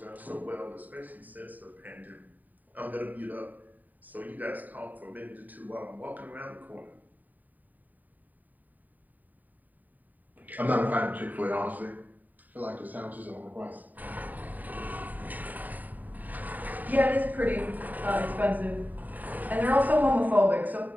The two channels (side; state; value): left; late; 0.084 ms